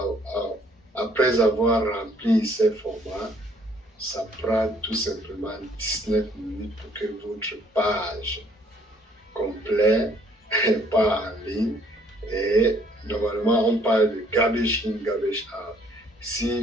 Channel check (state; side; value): normal; both; correlation 0.63